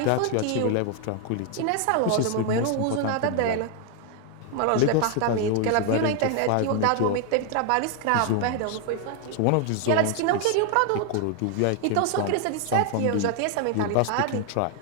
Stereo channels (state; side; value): different; both; correlation 0.00